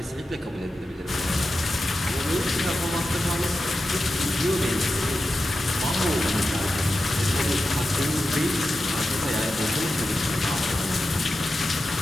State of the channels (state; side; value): normal; both; correlation 0.91